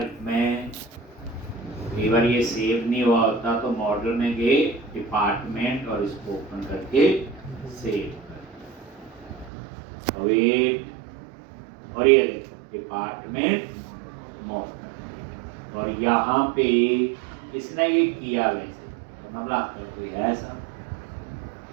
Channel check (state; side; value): drops out; left; at 9.5 s